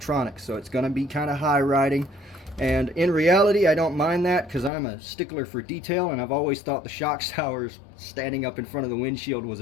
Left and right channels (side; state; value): right; drops out; at 4.7 s